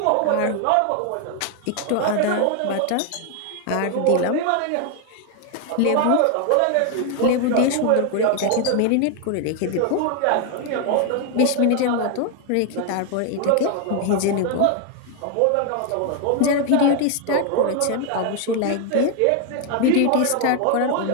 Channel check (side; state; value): both; different; correlation 0.00